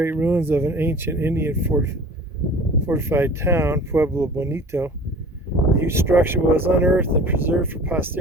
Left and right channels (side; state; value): both; normal; correlation 0.43